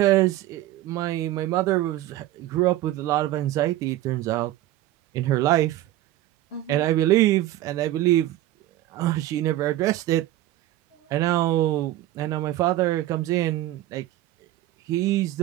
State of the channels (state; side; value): quieter; left; 14.8 dB